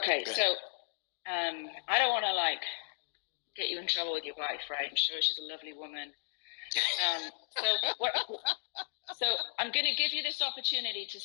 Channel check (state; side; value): silent; right; digital silence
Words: so I don't want to get you in trouble with your wife, right? I'm sure she's a lovely woman. So I'm going to give you this opportunity to